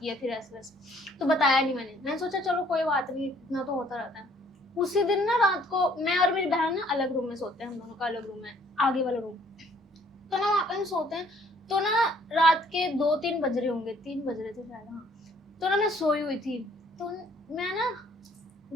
है फिर ऐसे वैसे, तो बताया नहीं मैंने सोचा चलो कोई बात नहीं, इतना तो होता रहता है। उसी दिन ना रात को मैं और मेरी बहन ना अलग रूम में सोते हैं, हम दोनों का अलग रूम है, आगे वाला रूम। तो ना वहाँ पे हम सोते हैं, तो ना रात के 2-3 बज रहे होंगे, 3 बज रहे थे शायद, हाँ। तो ना मैं सोई हुई थी, तो मैं ना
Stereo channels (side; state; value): both; normal; correlation 0.61